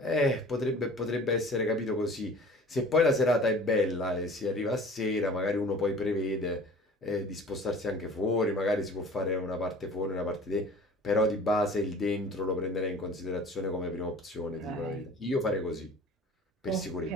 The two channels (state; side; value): normal; both; correlation 0.45